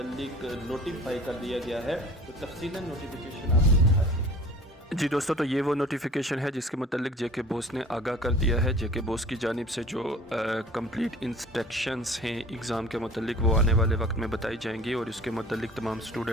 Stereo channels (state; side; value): normal; both; correlation 0.46